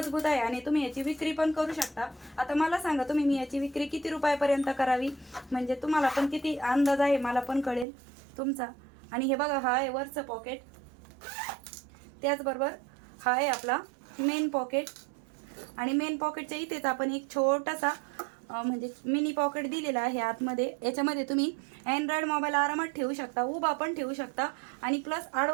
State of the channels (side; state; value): left; drops out; at 7.9 s